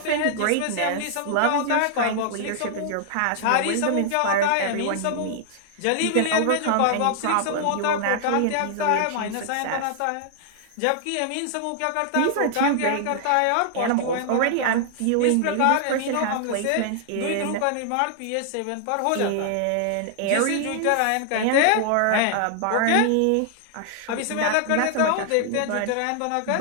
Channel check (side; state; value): both; different; correlation -0.01